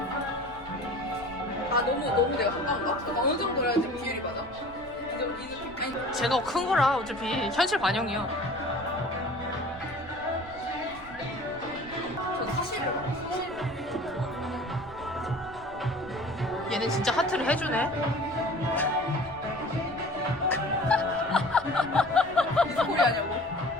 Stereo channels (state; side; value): noise; right; rumble, 19 dB below the sound